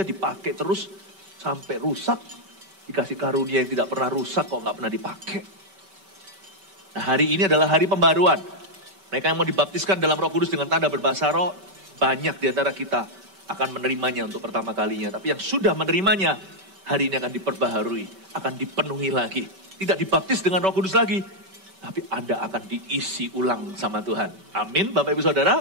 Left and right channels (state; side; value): late; left; 5.2 ms